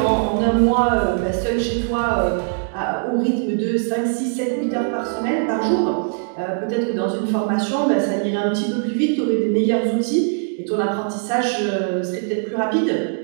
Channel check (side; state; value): left; silent; digital silence